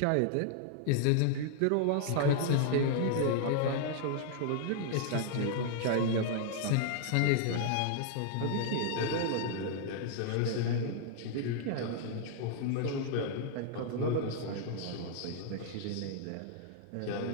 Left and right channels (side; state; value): both; different; correlation -0.01